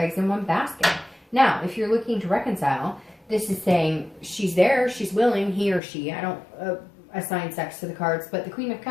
in one basket. Now, if you're looking to reconcile, this is saying she's there, she's willing, he or she. I don't assign sex to the cards, but the Queen of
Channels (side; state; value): right; drops out; at 5.8 s